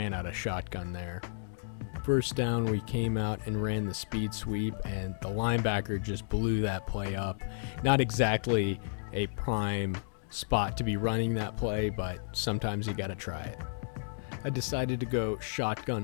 out of shotgun there. First down, we came out and ran the speed sweep, and the linebacker just blew that play up. Not exactly a prime spot to be running that play, but sometimes you gotta try it. I decided to go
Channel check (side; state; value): right; silent; digital silence